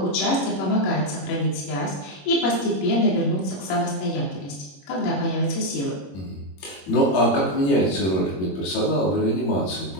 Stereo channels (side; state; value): right; late; 21 ms